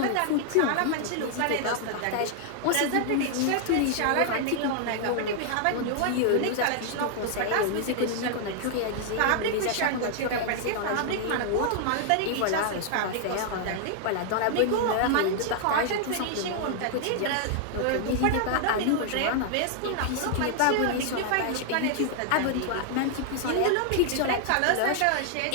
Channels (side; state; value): both; different; correlation 0.00